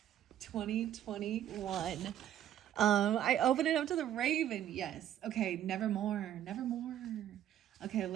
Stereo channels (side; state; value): left; quieter; 11.3 dB